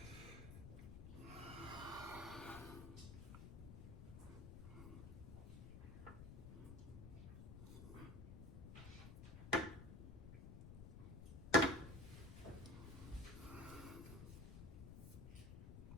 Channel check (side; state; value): left; noise; rumble, 9 dB below the sound